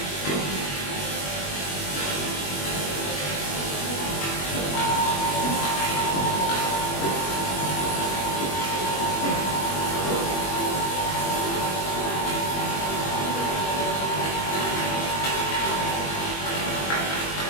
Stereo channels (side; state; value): right; late; 21 ms